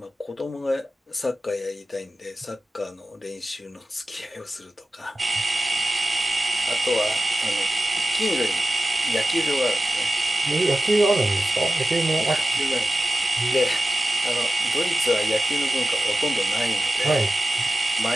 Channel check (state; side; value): normal; both; correlation 0.96